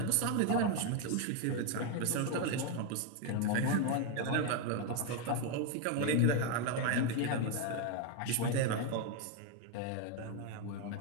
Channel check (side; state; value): both; different; correlation 0.01